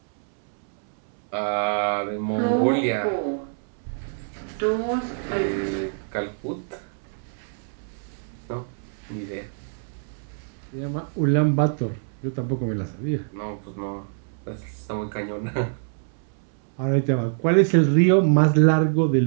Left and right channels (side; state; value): left; silent; 62 dB below the other